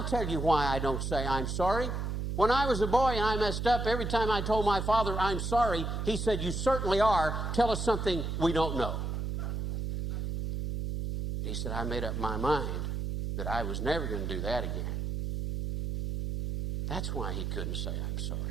tell you why I don't say I'm sorry. When I was a boy and I messed up, every time I told my father I'm sorry, he said, you certainly are. Tell us something we don't know. He said, I made up my mind that I was never going to do that again. That's why he couldn't say I'm sorry.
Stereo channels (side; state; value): right; noise; hum, 2 dB below the sound